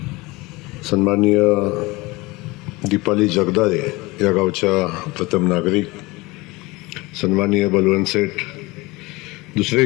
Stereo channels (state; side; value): quieter; right; 22.8 dB